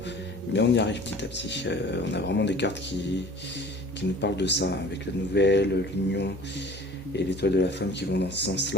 mais on y arrive petit à petit. On a vraiment des cartes qui nous parlent de ça, avec la nouvelle, l'union et l'étoile de la femme qui vont dans ce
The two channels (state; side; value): normal; both; correlation 0.45